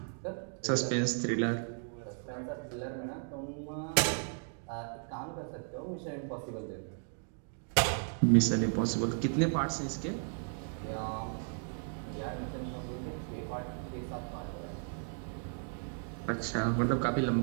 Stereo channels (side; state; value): left; silent; 54 dB below the other